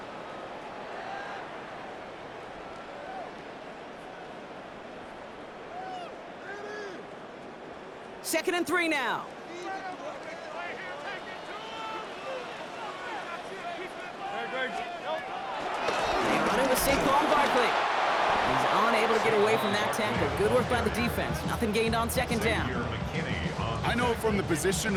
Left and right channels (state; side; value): identical; both; correlation 1.00